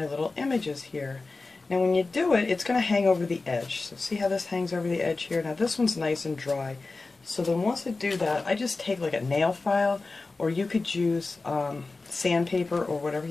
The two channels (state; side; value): quieter; right; 3.6 dB